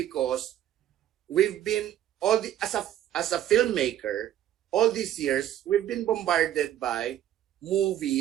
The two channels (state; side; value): quieter; left; 11.8 dB